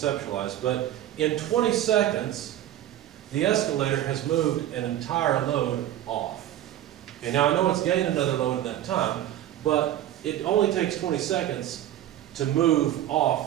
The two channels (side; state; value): left; quieter; 12.5 dB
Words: but in 20 seconds, the escalator has moved an entire load off. Okay, now I know it's gained another load in that time, but it only takes 20 seconds to move